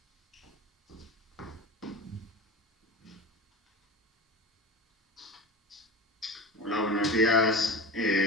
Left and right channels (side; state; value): both; normal; correlation 0.30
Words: Hola, buenos días.